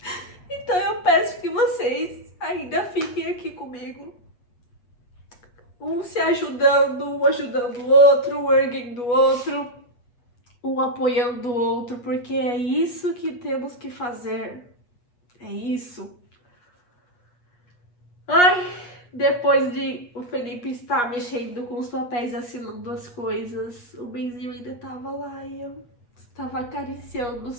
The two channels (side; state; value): right; late; 8.3 ms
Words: Então eu peço que vocês ainda fiquem aqui comigo. Um se ajudando, um ajudando o outro, um erguendo o outro, um apoiando o outro, porque é isso que temos que fazer. É isso. Ai, depois de o Felipe estar mexendo com os papéis, assinando as coisas, o Benzinho ainda estava lá e eu estava acariciando